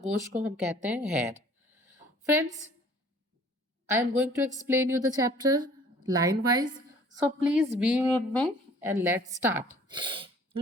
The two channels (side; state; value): both; normal; correlation 0.53